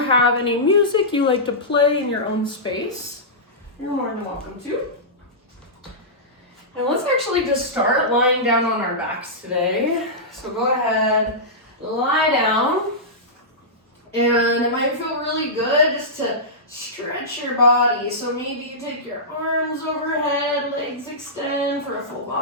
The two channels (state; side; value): normal; both; correlation -0.15